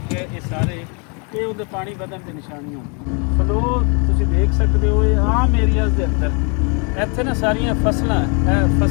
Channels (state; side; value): quieter; right; 34.8 dB